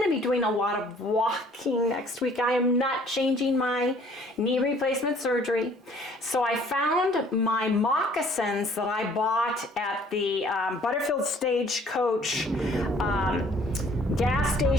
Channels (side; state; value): both; normal; correlation 0.57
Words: to be doing a lot of walking next week. I am not changing my knee replacement surgery. So I found my moccasins that I bought at the Butterfield Stagecoach gas